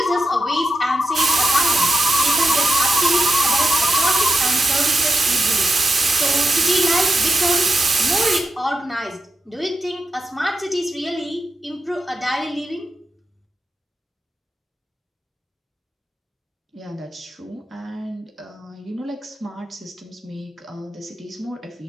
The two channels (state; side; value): normal; both; correlation 0.88